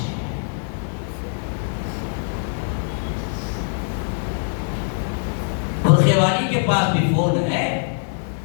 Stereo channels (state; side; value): silent; right; 64 dB below the other